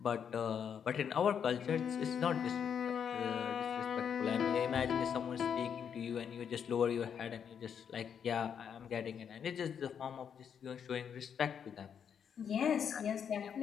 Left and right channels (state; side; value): quieter; right; 7.7 dB